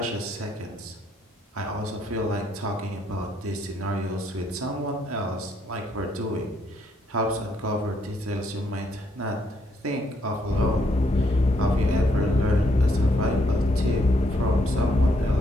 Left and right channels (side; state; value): both; normal; correlation 0.73